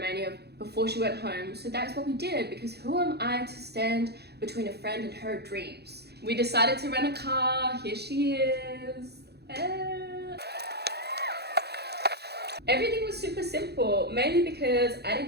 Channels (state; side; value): late; left; 0.48 ms